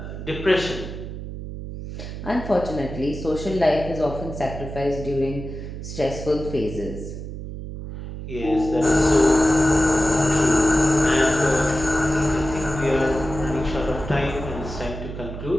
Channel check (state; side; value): noise; right; hum, 9 dB below the sound